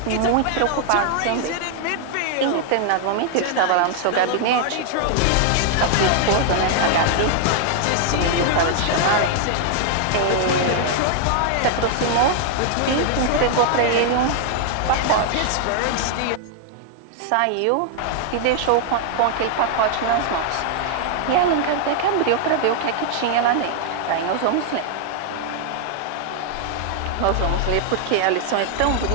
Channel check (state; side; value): different; both; correlation 0.00